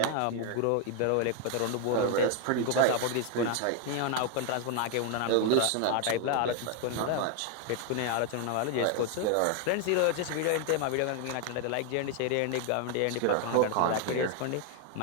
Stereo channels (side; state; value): both; different; correlation 0.01